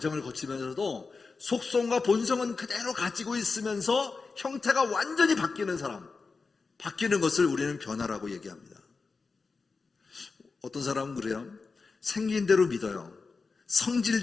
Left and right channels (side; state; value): right; quieter; 4.4 dB